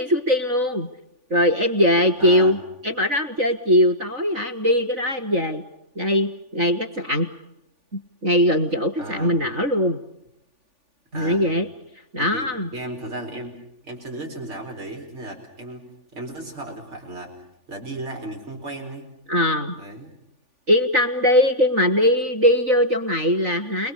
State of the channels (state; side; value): late; left; 3.5 ms